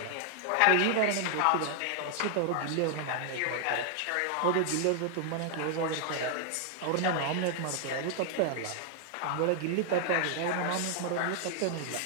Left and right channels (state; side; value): different; both; correlation 0.00